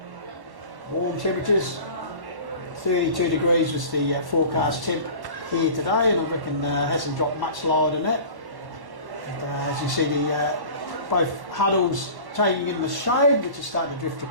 warm temperatures. 32 degrees was the forecast temp here today, and I reckon hasn't dropped much lower than that. And, as you see, both huddles taking in the shade, which is starting to drift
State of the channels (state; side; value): late; left; 1.1 ms